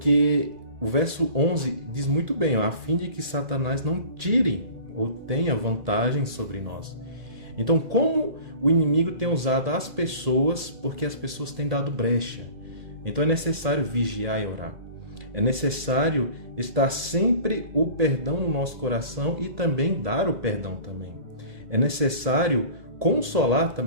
o verso 11 diz muito bem, a fim de que Satanás não tire ou tenha vantagem sobre nós. Então, como o inimigo tem usado as pessoas, porque as pessoas têm dado brecha. Então é necessário vigiar e orar. É necessário estar sempre o perdão no nosso coração e também dar o perdão também. É necessário consolar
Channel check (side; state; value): left; late; 2.0 ms